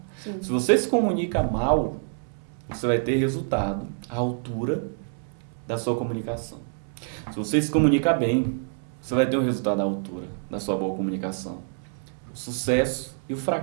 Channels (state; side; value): silent; left; 61 dB below the other